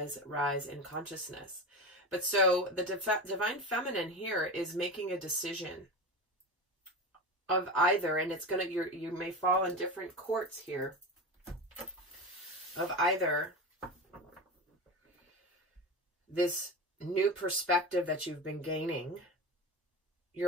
rise in consciousness. But so the divine feminine here is making a decision of either, and it's going to, you may fall in different courts here, of either this new perspective that you've been gaining,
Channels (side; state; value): both; normal; correlation 0.25